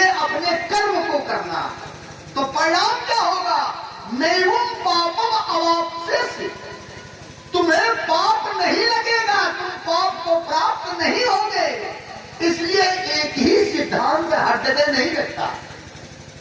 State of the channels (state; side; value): identical; both; correlation 1.00